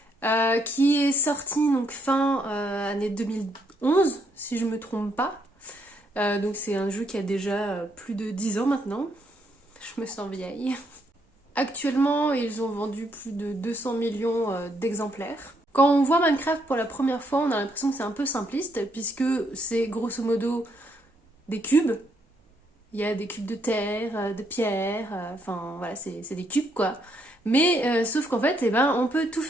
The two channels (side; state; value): both; normal; correlation 0.74